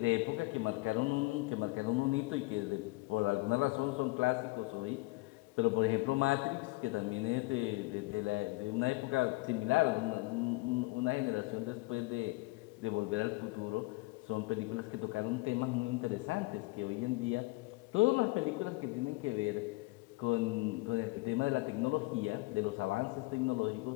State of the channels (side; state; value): right; quieter; 23.3 dB